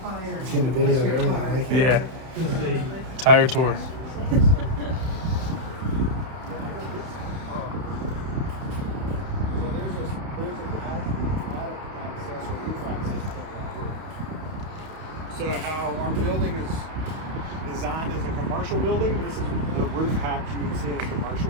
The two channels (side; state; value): left; late; 31 ms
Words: fire. Getting a video of everything. I like it. Yeah. Tire tour. So there's an attic access or roof access point right here. So how our building is designed as a commercial building, this is the roof hatch you would see in a commercial